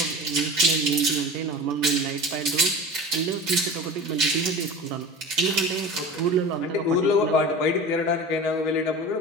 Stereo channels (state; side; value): normal; both; correlation 0.34